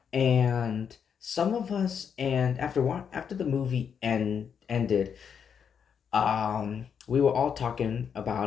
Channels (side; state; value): right; quieter; 7.3 dB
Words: and some of us, and after the movie ended, we were all talking